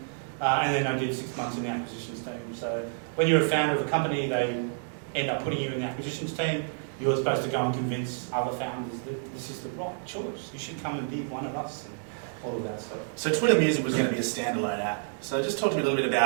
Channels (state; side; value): silent; left; digital silence